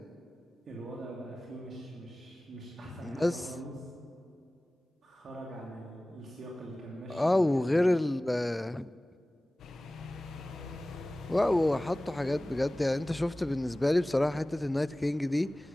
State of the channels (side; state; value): both; normal; correlation 0.97